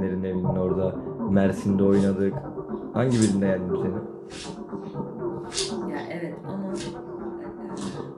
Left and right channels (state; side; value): identical; both; correlation 1.00